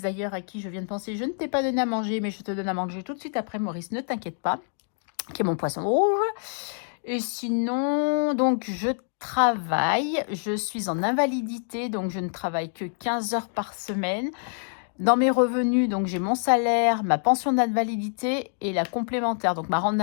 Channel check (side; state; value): right; silent; digital silence